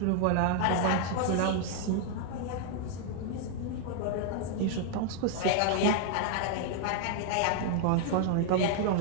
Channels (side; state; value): both; different; correlation 0.00